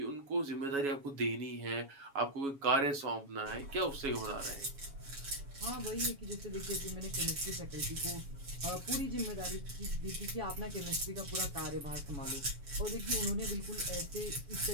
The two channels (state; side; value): late; left; 7.2 ms